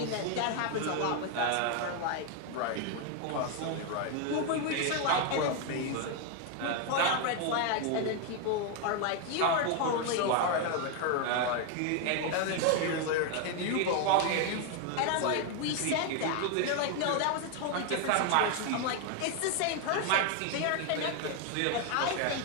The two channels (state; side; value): different; both; correlation 0.01